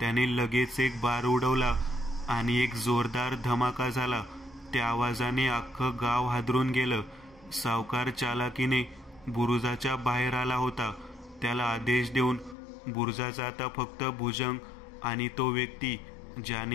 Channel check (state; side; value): drops out; right; at 12.6 s